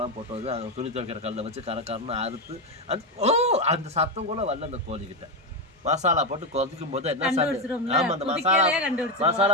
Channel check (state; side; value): normal; both; correlation 0.09